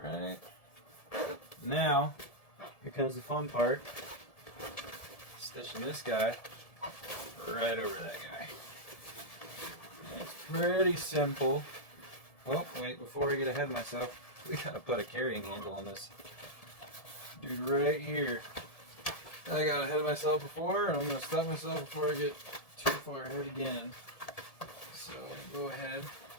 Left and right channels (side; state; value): right; late; 1.7 ms